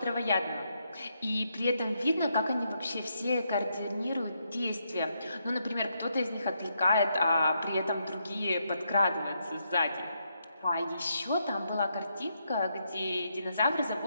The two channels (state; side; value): inverted; both; correlation -0.79